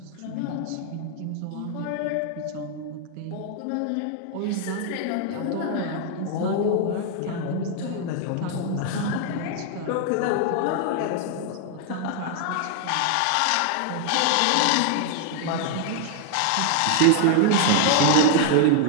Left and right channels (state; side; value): different; both; correlation 0.00